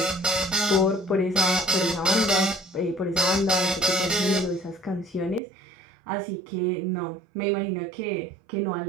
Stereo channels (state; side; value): drops out; left; at 5.4 s